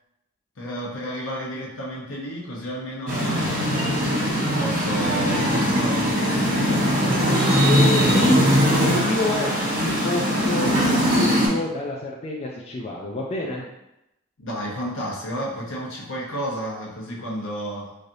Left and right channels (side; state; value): both; normal; correlation 0.52